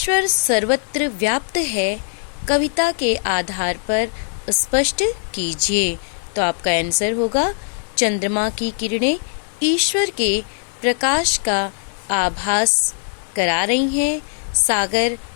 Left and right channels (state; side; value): silent; right; 65 dB below the other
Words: सर्वत्र व्याप्त है, कविता के आधार पर स्पष्ट कीजिए। तो आपका आंसर होगा, चंद्रमा की किरणें ईश्वर के प्रकाश का आभास करा रही हैं, सागर